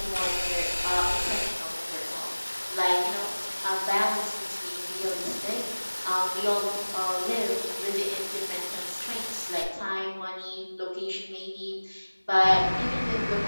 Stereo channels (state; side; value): inverted; both; correlation -1.00